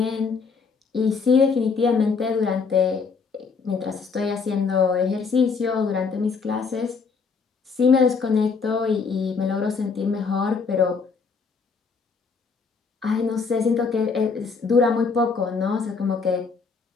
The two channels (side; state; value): right; quieter; 5.1 dB